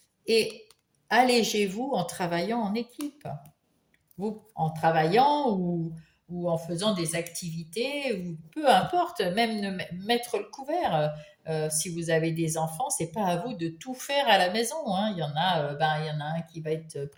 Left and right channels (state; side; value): identical; both; correlation 1.00